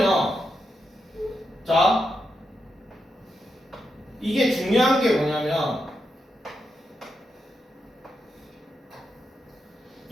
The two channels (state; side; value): normal; both; correlation 0.85